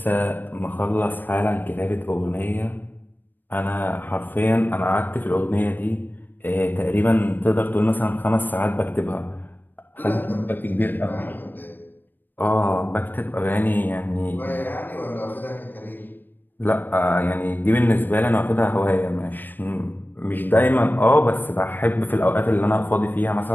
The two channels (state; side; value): late; right; 0.091 ms